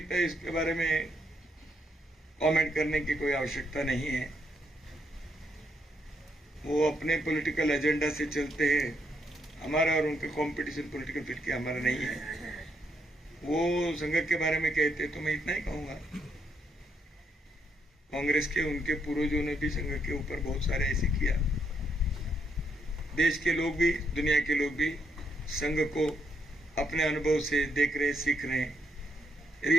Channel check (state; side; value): normal; both; correlation 0.76